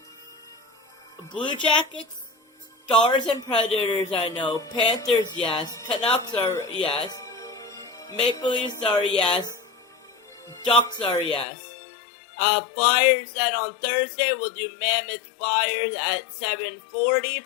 Blue Jackets, Stars and Predators, I know. Panthers, yes. Canucks are yes. Maple Leafs are yes. Ducks are yes. Flyers then on Thursday, we'll do Mammoth Flyers at 7:40,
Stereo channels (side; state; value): right; drops out; at 11.5 s